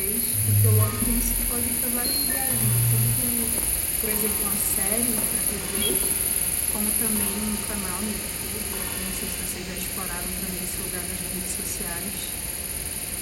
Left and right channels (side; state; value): both; identical; correlation 1.00